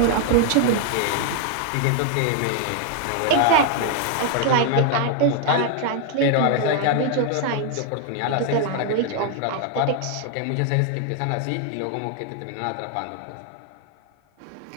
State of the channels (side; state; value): both; different; correlation 0.00